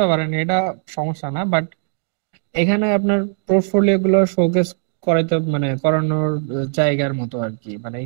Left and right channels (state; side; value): silent; left; digital silence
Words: পারেন, এটা সমস্যা না। বাট এখানে আপনার পোর্টফোলিও গুলো শোকেস করাইতে মানে করানোর জায়গার মতো আর কি। মানে